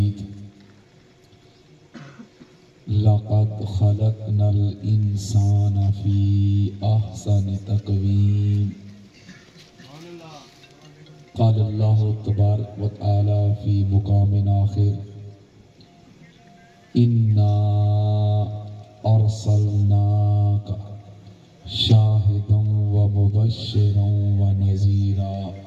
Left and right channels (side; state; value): both; identical; correlation 1.00